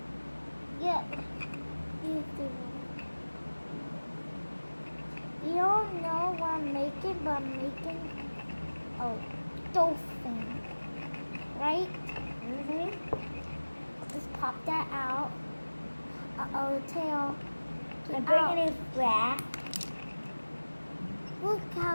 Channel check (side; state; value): both; inverted; correlation -1.00